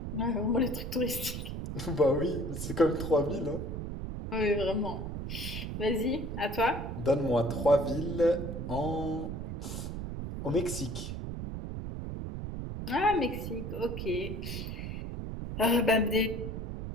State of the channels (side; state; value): right; noise; rumble, 5 dB below the sound